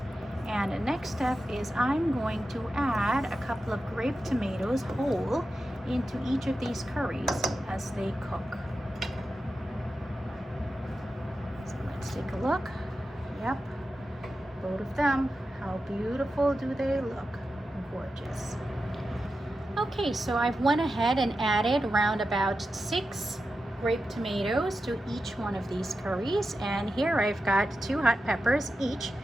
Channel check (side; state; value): both; normal; correlation 0.91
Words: And the next step is I'm going to add a couple of grape tomatoes whole into each of these curries as they cook. So let's take a look. Yep, both of them. How beautiful do they look? Gorgeous. Okay, so I've went ahead and added around about 6 grape tomatoes to each one of these curries, and here I've got 2 hot peppers each,